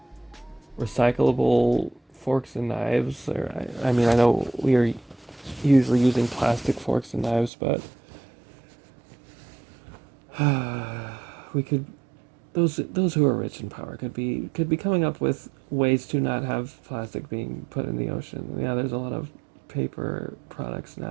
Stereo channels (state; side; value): drops out; left; at 7.5 s